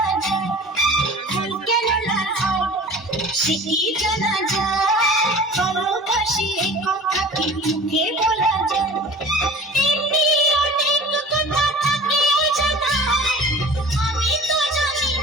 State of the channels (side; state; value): both; normal; correlation 0.42